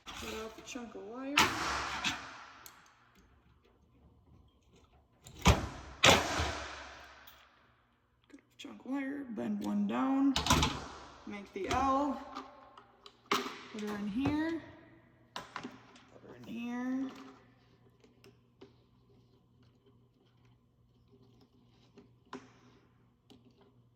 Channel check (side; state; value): both; identical; correlation 1.00